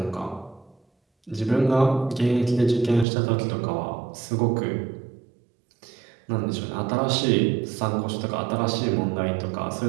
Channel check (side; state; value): left; drops out; at 3.1 s